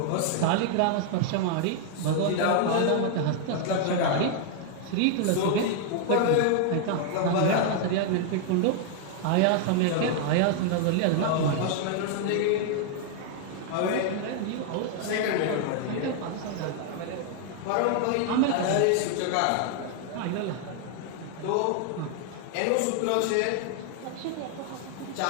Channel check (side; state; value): both; different; correlation 0.00